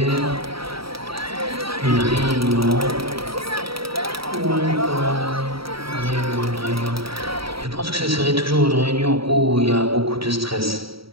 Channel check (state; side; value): late; left; 0.75 ms